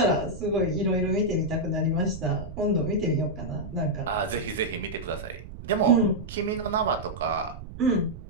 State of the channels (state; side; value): noise; right; rumble, 12 dB below the sound